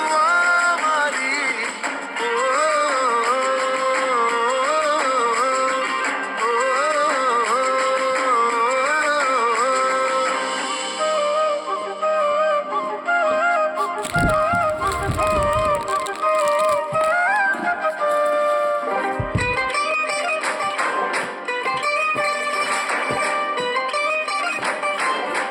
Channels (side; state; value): both; identical; correlation 1.00